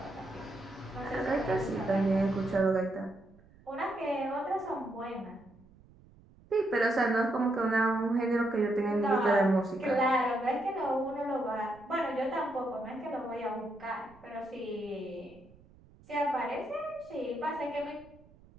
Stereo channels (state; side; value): noise; right; rumble, 26 dB below the sound